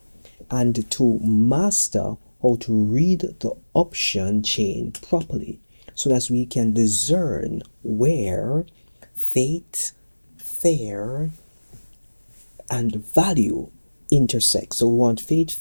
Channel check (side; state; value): both; inverted; correlation -1.00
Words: and to master how to read the option chain properly so that we can discern where fate, fair, and value intersect. So we want fate,